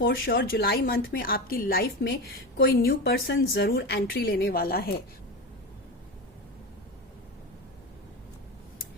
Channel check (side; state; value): both; normal; correlation 0.22